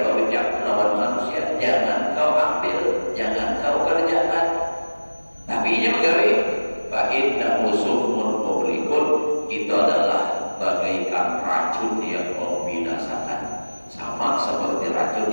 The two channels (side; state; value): both; inverted; correlation -1.00